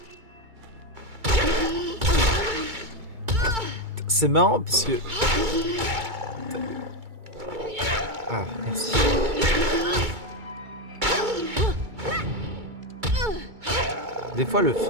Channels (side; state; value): left; late; 2.2 ms